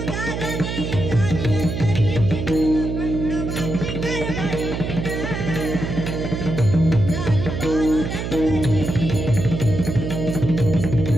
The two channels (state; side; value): noise; right; hum, 4 dB below the sound